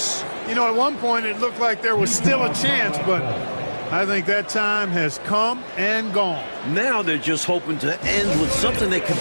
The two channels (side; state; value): both; inverted; correlation -1.00